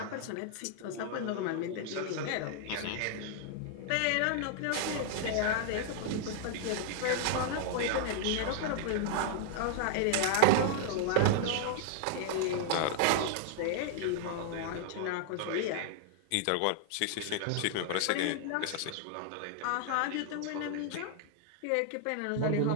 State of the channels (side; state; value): both; different; correlation 0.00